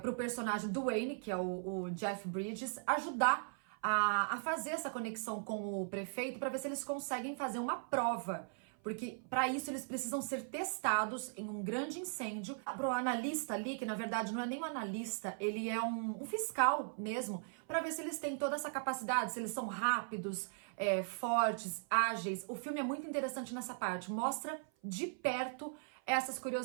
personagem do Wayne, que é o Jeff Bridges, ajudar a fazer essa conexão com o prefeito para ver se eles conseguem fazer uma prova. Porque para isso eles precisam ser testados em um grande incêndio. Para o analista ali, que na verdade não é nem um analista, ele é um fiscal mesmo, para ver se eles têm toda essa capacidade, se eles são rápidos, fortes, ágeis. O filme é muito interessante nessa parte, mostra de perto essas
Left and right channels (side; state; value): left; silent; 52 dB below the other